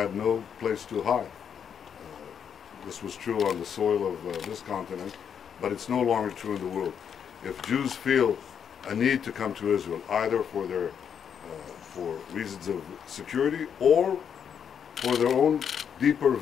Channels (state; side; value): quieter; right; 7.7 dB